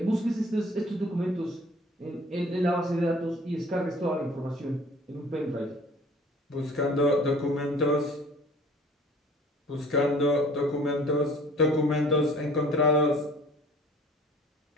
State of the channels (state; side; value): normal; both; correlation 0.51